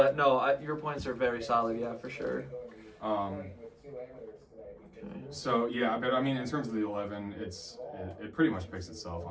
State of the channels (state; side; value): identical; both; correlation 1.00